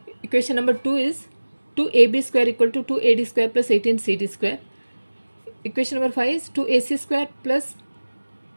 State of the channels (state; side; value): inverted; both; correlation -1.00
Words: Equation number 2 is 2AB square equal to 2AD square plus 18CD square. Equation number 5 is 2AC square plus